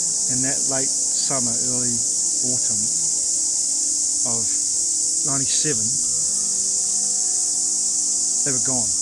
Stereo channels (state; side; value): identical; both; correlation 1.00